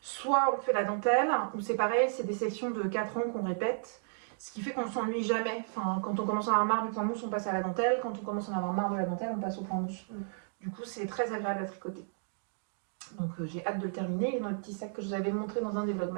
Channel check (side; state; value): left; silent; digital silence